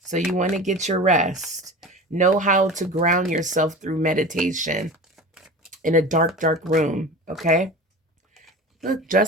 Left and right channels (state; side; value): normal; both; correlation 0.34